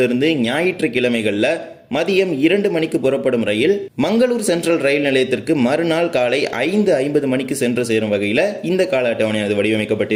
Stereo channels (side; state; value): both; identical; correlation 1.00